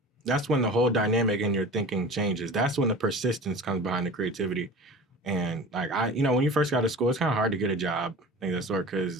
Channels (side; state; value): both; normal; correlation 0.37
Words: the whole dynamic in your thinking changes. That's when the persistence comes behind the creativity. And like when you first got to school, it's kind of hard to get a job, things of that sort.